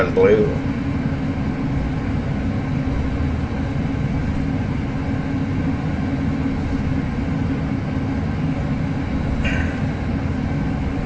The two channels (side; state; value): both; identical; correlation 1.00